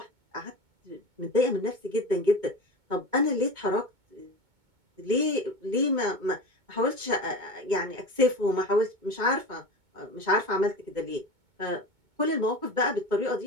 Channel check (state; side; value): late; left; 2.2 ms